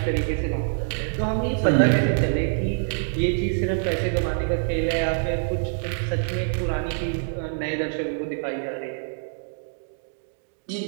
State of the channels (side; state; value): left; silent; digital silence